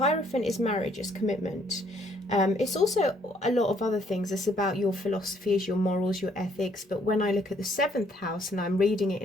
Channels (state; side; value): normal; both; correlation 0.66